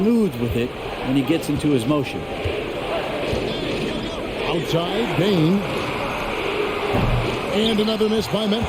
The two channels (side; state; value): both; identical; correlation 1.00